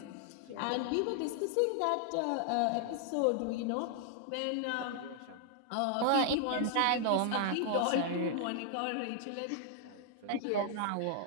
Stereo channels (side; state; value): both; different; correlation 0.00